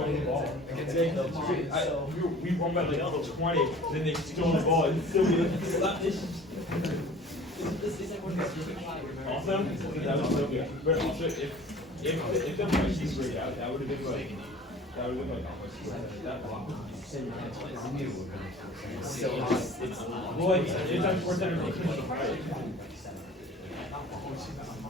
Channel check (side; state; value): both; normal; correlation 0.46